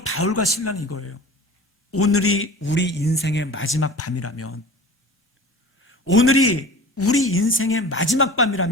바울과 실라는 이거예요. 오늘이 우리 인생의 마지막 밤이라면, 오늘이 우리 인생의 마지막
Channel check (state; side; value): normal; both; correlation 0.38